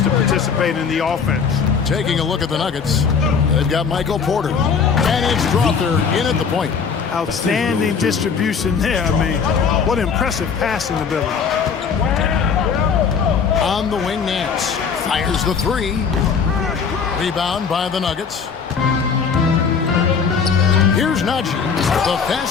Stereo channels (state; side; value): quieter; right; 6.1 dB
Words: to participate in the offense. Taking a look at the Nuggets, they've got Michael Porter, and it's Strawther in at the point. Outstanding distribution there. I mean, what impressive passing ability. On the wing, Nance fires the 3. Rebound by the Nuggets. Here's Najee. The